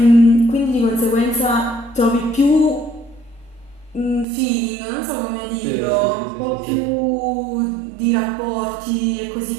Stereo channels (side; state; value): left; drops out; at 4.2 s